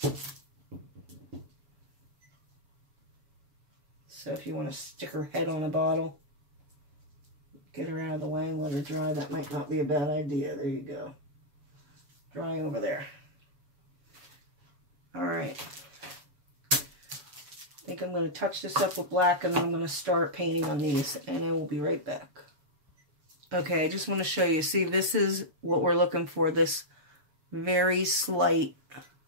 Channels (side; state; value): left; late; 7.1 ms